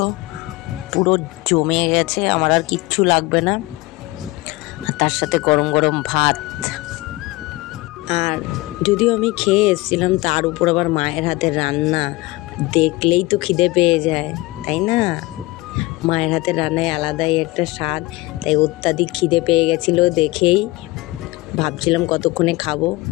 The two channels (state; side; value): quieter; right; 21.5 dB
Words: পুরো জমে গেছে, আমার আর কিচ্ছু লাগবে না। তার সাথে গরম গরম ভাত। আর যদিও আমি খেয়ে এসেছিলাম, তার উপর আবার মায়ের হাতের রান্না দেখলেই তো খিদে পেয়ে যায়, তাই না? মায়ের হাতের রান্নায় আলাদাই একটা স্বাদ, তাই অত্যাধিক খিদে পেয়ে গেছিলো দেখেই ভাবছিলাম কতক্ষণে খাবো।